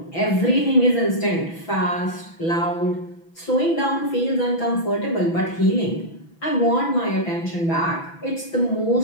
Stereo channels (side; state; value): right; late; 6.0 ms